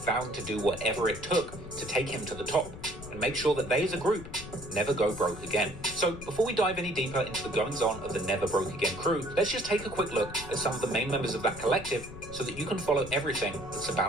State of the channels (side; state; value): left; noise; rumble, 13 dB below the sound